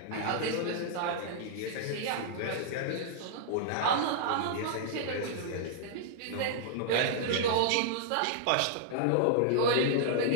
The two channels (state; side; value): different; both; correlation -0.01